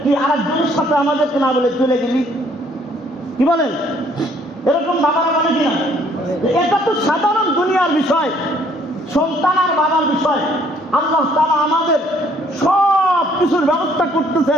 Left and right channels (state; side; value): normal; both; correlation 0.63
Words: তুই আরেকজনের সাথে আমাদেরকে না বলে চলে গেলি? কি বলেন? এরকম বাবারা বলে কিনা? এটা তো সাধারণ দুনিয়ার বিষয়, সন্তান আর বাবার বিষয়। আল্লাহ তাআলা আমাদের সব কিছুর ব্যবস্থা